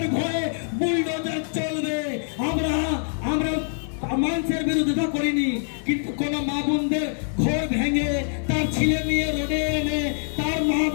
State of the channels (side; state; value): right; silent; 59 dB below the other